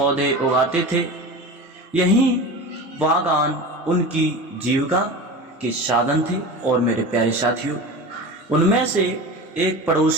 उगाते थे। यही बागान उनकी जीविका के साधन थे। और मेरे प्यारे साथियों, उनमें से एक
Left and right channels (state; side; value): normal; both; correlation 0.31